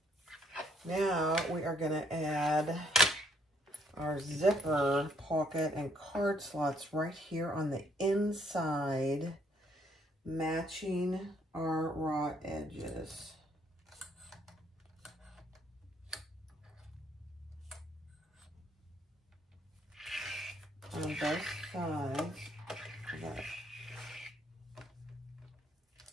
Now, we are going to add our zipper pocket and card slots right here on the inside, matching our raw edges. On both sides of that.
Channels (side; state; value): both; normal; correlation 0.68